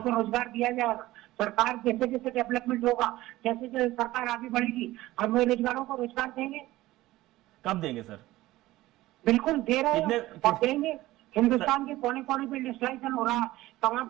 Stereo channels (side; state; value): left; quieter; 17.1 dB